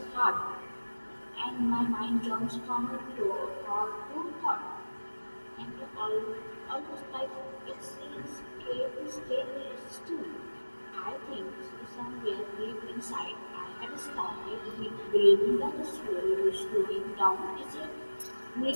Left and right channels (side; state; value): both; inverted; correlation -1.00